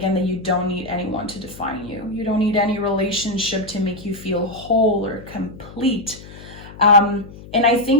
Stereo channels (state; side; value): noise; left; hum, 17 dB below the sound